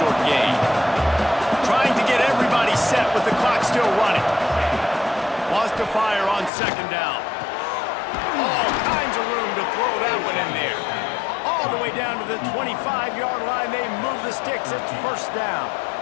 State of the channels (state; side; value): drops out; right; at 6.5 s